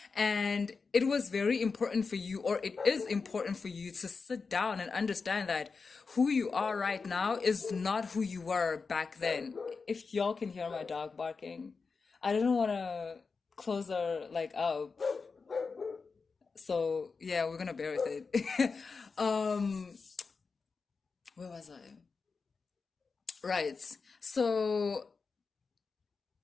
And it was very important for you, or it is important for you to sit down and understand that who you are right now is not who you were back then. If y'all can hear my dog barking, I didn't want to close her like up. So yeah, we're gonna bear with it. um, where was I? Right. So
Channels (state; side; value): quieter; right; 4.7 dB